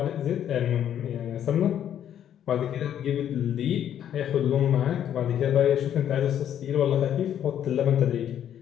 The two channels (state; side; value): quieter; right; 10.1 dB